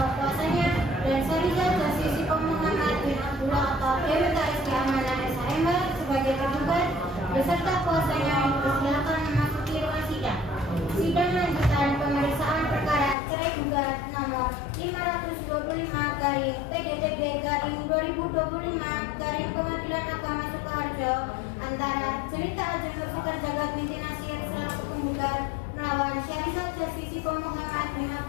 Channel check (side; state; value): right; drops out; at 13.2 s